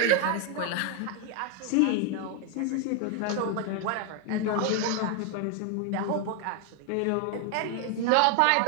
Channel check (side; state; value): both; different; correlation 0.01